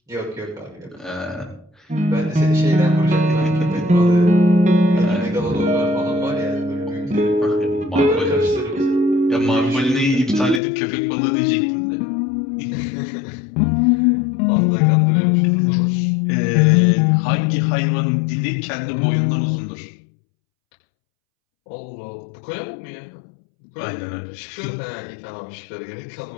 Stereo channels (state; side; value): drops out; right; at 10.6 s